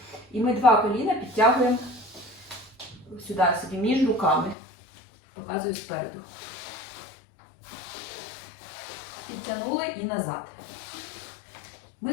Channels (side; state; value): right; drops out; at 4.5 s